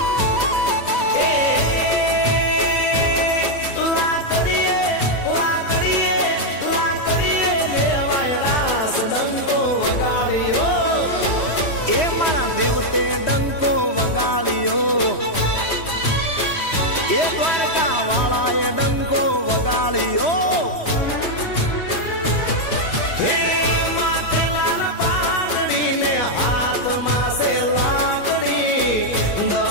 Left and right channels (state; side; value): late; right; 3.1 ms